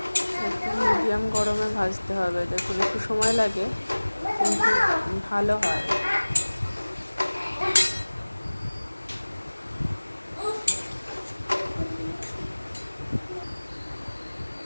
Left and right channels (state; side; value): inverted; both; correlation -1.00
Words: মিডিয়াম গরমে ভাজতে হবে, দেখুন একটু সময় লাগে কিন্তু ভালো হয়।